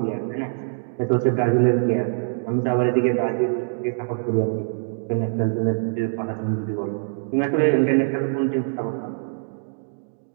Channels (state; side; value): silent; left; digital silence